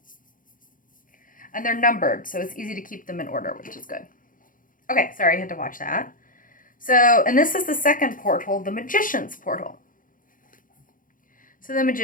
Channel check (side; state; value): right; late; 0.39 ms